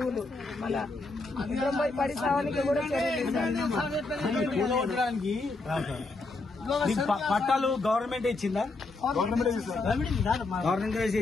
మళ్ళా పడి సావానికి కూడా కూలగొట్టడానికి పట్టాలు గవర్నమెంట్ ఇచ్చిందా? గవర్నమెంట్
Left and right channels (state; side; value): quieter; right; 3.4 dB